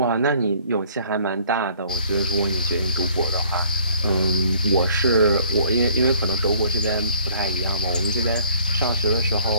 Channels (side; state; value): both; inverted; correlation -0.57